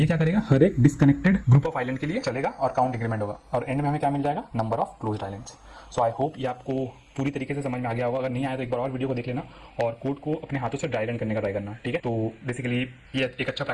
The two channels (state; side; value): identical; both; correlation 1.00